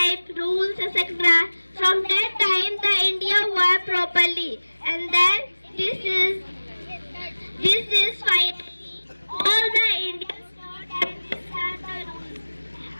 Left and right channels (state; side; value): inverted; both; correlation -1.00